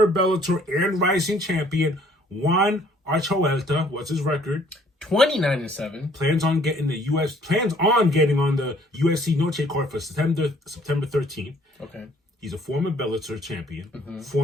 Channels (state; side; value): normal; both; correlation 0.60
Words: Bellator and Rising champion Juan Archuleta. What's his record? 29-7. Plans on getting on the UFC Noche card for September 13th. Okay. He's a former Bellator champion,